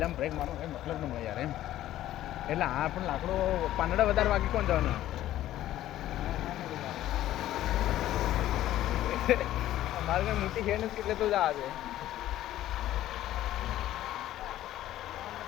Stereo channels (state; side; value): quieter; right; 13.6 dB